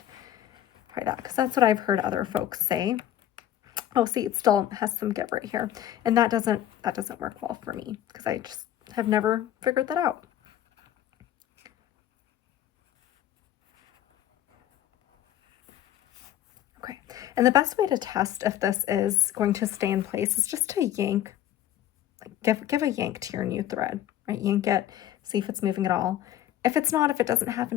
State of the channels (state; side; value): quieter; right; 12.1 dB